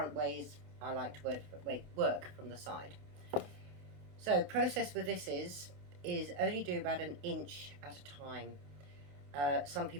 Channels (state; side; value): late; left; 28 ms